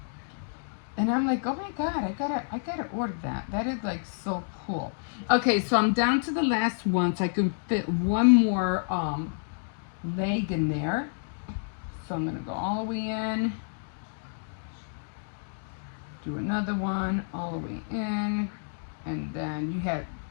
And I'm like, oh my God, I gotta order that. That is like so cool. Okay, so I'm down to the last one, so I can fit one more leg in there. So I'm gonna go all the way in, do another one all the way in, and then you had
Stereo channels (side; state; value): right; silent; digital silence